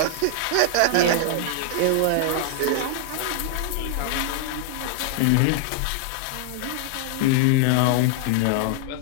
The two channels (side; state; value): both; different; correlation 0.00